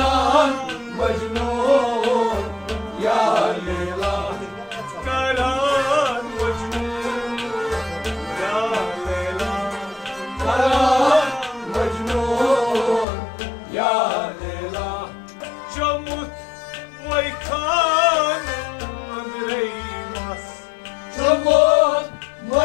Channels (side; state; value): right; drops out; at 13.1 s